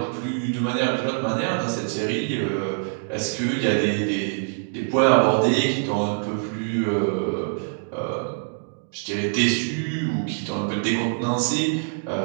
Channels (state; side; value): silent; left; digital silence